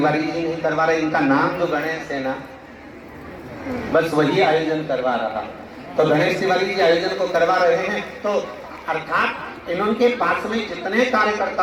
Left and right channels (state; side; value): identical; both; correlation 1.00